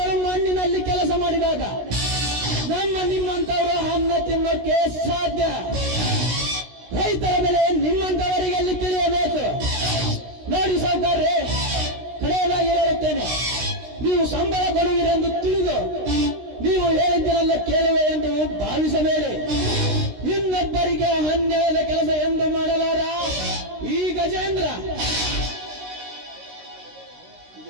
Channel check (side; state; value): left; late; 16 ms